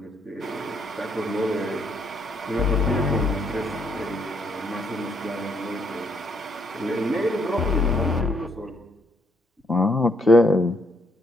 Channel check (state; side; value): normal; both; correlation 0.72